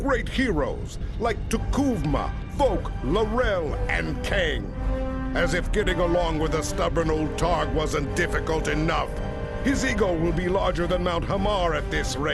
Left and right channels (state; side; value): identical; both; correlation 1.00